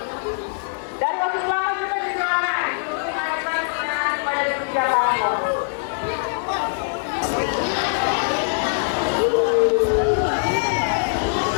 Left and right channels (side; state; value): right; silent; digital silence